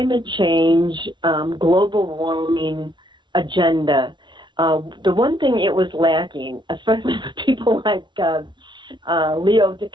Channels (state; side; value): late; left; 0.23 ms